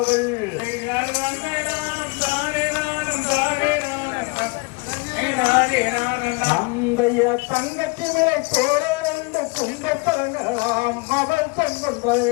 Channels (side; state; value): right; quieter; 28.8 dB